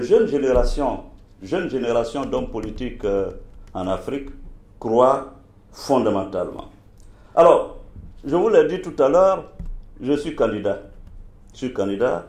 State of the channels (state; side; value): identical; both; correlation 1.00